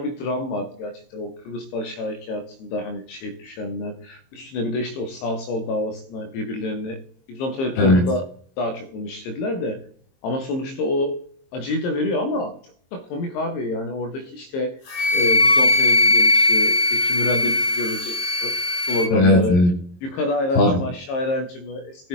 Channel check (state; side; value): late; right; 22 ms